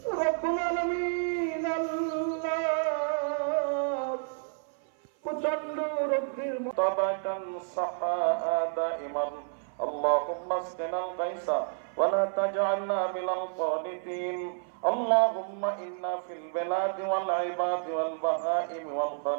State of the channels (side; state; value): left; silent; 56 dB below the other